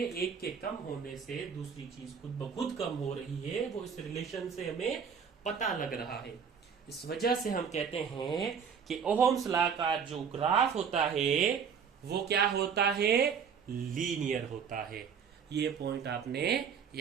एक के कम होने से दूसरी चीज खुद ब खुद कम हो रही है। वो इस रिलेशन से हमें पता लग रहा है। इस वजह से हम कहते हैं कि ओहम्स लॉ का जो ग्राफ होता है वो क्या होता है? लीनियर होता है। ये पॉइंट आपने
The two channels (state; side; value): quieter; left; 6.8 dB